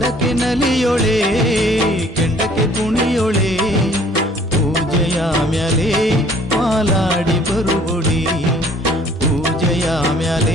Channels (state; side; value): normal; both; correlation 0.56